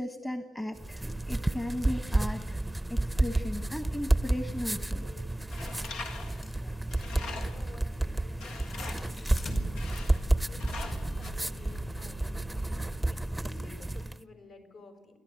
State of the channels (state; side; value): normal; both; correlation 0.98